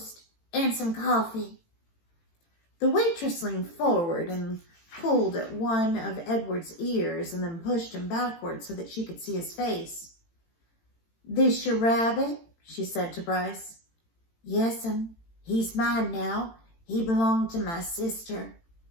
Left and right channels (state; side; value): late; right; 18 ms